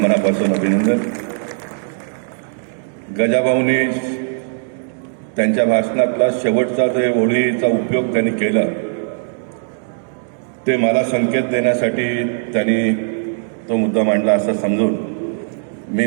मनापासून अभिनंदन. गजाभाऊनी त्यांच्या भाषणातला शेवटचा जे ओळीचा उपयोग त्यांनी केला ते मला संकेत देण्यासाठी त्यांनी तो मुद्दा मांडला असं समजून मी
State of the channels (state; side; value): silent; left; digital silence